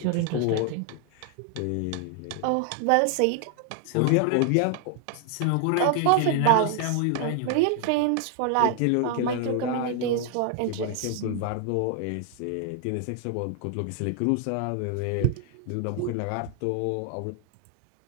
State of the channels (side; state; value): both; different; correlation 0.00